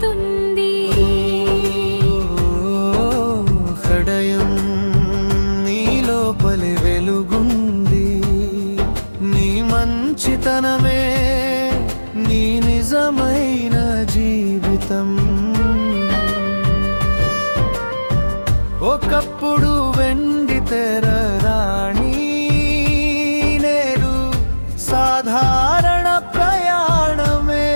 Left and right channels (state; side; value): inverted; both; correlation -1.00